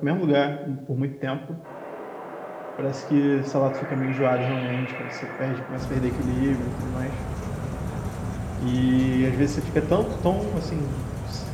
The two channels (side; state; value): both; identical; correlation 1.00